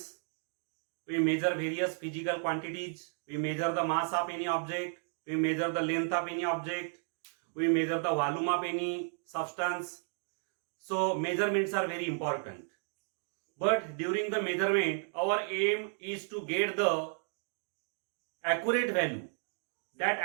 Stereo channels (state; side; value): silent; left; 55 dB below the other